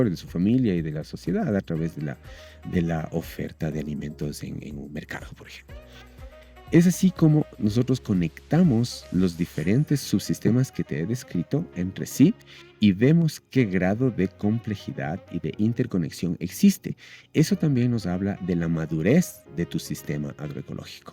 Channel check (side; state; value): both; identical; correlation 1.00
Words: de su familia y de la sociedad a través de la oferta de alimentos en un mercado, por ejemplo. Es así como nosotros conectamos los diferentes subsistemas que te he descrito entre sí y vemos qué grado de complejidad y de interconexión existe. Eso también nos habla de la madurez de tu sistema